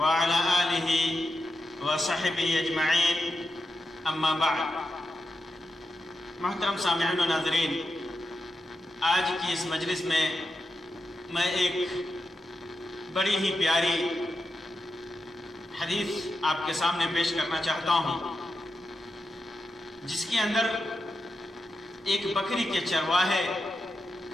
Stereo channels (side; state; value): both; normal; correlation 0.88